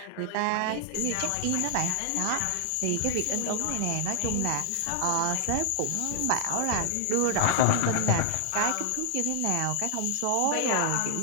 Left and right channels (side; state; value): both; different; correlation 0.00